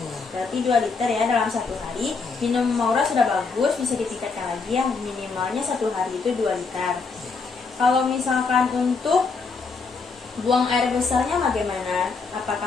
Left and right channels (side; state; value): right; quieter; 4.6 dB